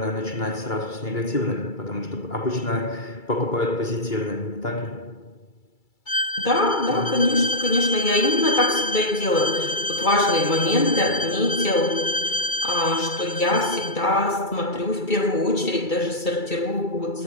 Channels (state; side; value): late; right; 2.3 ms